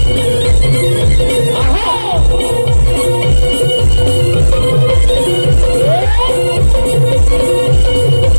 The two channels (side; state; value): both; inverted; correlation -1.00